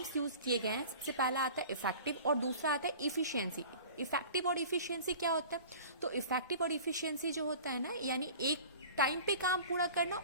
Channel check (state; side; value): inverted; both; correlation -0.42